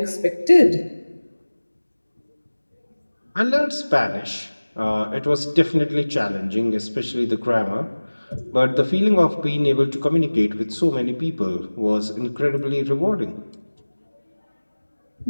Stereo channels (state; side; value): inverted; both; correlation -1.00